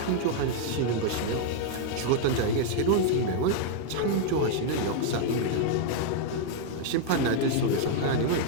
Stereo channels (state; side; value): different; both; correlation 0.00